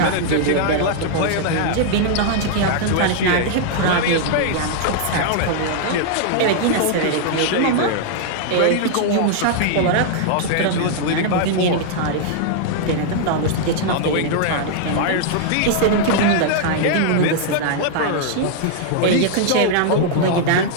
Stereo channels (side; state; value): both; different; correlation -0.01